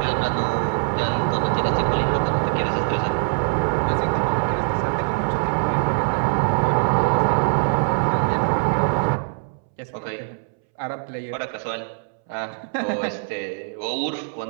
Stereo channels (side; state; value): left; silent; 64 dB below the other